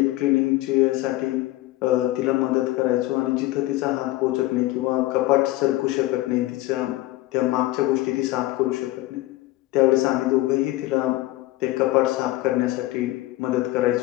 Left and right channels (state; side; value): quieter; right; 17.5 dB